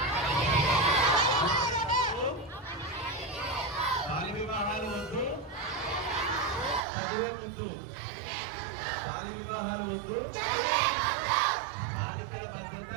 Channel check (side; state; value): left; drops out; at 6.9 s